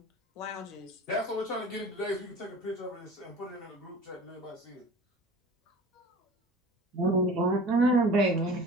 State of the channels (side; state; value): both; normal; correlation 0.41